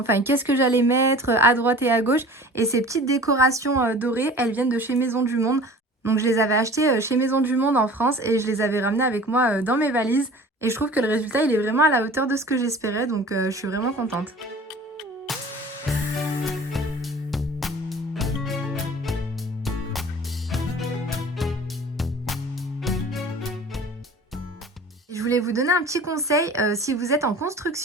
qu'est-ce que j'allais mettre à droite et à gauche et ces petites décorations dorées, elles viennent de chez Maison du Monde. Donc, je les avais achetées chez Maison du Monde en France et je les avais ramenées avec moi dans mes valises et je trouve que le résultat, il est vraiment à la hauteur de ce que j'espérais donc je suis vraiment contente. Je voulais vous donner un petit conseil, si vous êtes en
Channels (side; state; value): both; normal; correlation 0.43